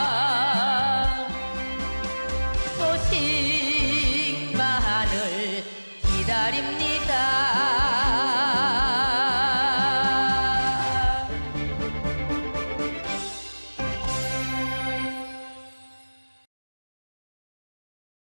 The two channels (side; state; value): both; inverted; correlation -1.00